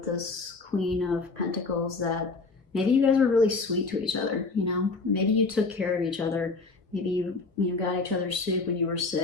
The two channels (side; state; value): right; quieter; 3.9 dB